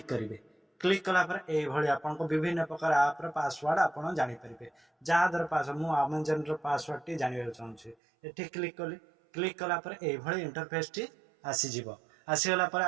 करिवे। क्लिक कला पर ए भली आपण को विभिन्न प्रकार ऐप रे पासवर्ड आपण जानि परिबे। जा दर पासवर्ड मु अमेज़न रो पासवर्ड टी जानिबे चाहूची एठी क्लिक कली। क्लिक कला पर ए भली इंटरफेस टी आसी जिवो। आसीगला पर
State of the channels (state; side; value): drops out; left; at 8.0 s